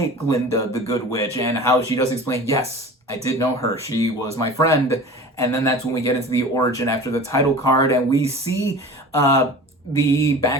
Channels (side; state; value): both; normal; correlation 0.38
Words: Glinda, the Good Witch, and how she does explain, yes, I did know her. She was my friend. And then that's when we get into the origin after the title card, and we see the